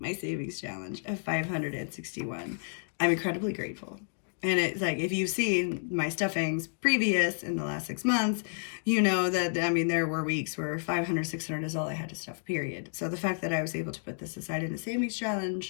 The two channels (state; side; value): silent; right; digital silence